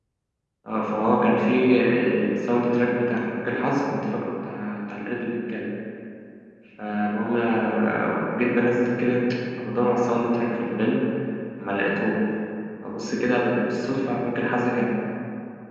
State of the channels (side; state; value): both; identical; correlation 1.00